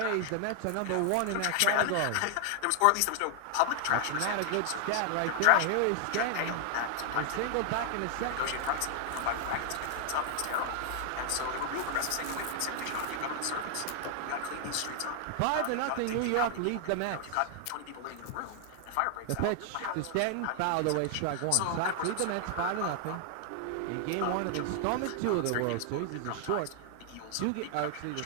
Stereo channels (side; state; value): both; different; correlation 0.00